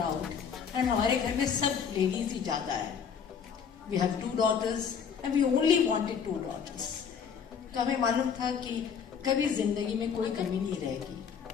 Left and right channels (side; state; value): right; quieter; 7.0 dB